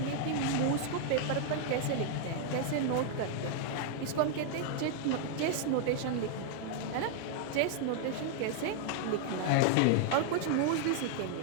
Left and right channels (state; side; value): different; both; correlation 0.00